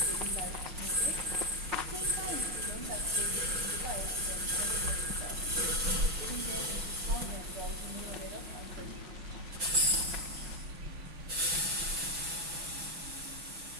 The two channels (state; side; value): late; left; 6.1 ms